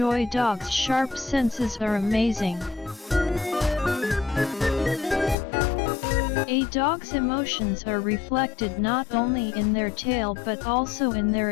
Dogs' sharp senses are amazing. A dog's emotions are reflected not only in their tail but also in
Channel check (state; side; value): drops out; right; at 5.4 s